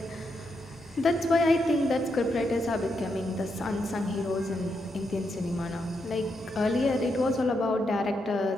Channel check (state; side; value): normal; both; correlation 0.82